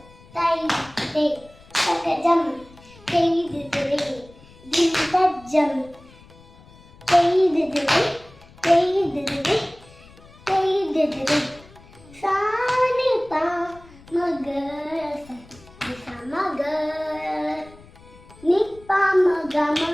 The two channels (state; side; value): noise; left; rumble, 24 dB below the sound